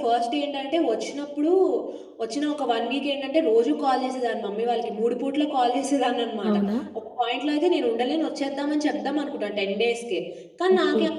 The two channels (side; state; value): both; identical; correlation 1.00